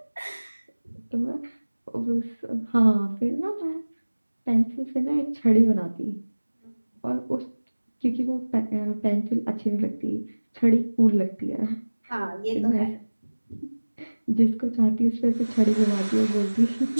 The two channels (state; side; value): inverted; both; correlation -1.00